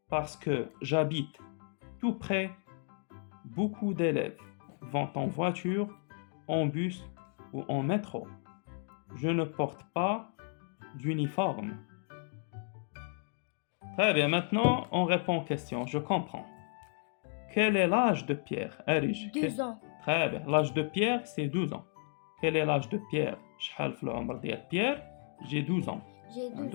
parce que j'habite tout près. Beaucoup d'élèves vont en voiture, en bus ou en métro. Je ne porte pas d'uniforme. Très bien, maintenant on répond aux questions. Je comprends. Quel est l'âge de Pierre? Arish. 12 ans. Très bien. L'âge de Pierre, c'est 12 ans. Quel est l'âge de Pierre? شحال في العمر ديال Pierre? J'ai 12 ans. J'ai 12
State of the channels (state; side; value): silent; right; 55 dB below the other